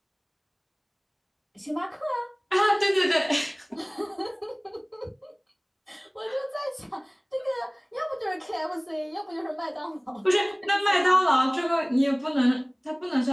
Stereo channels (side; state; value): both; identical; correlation 1.00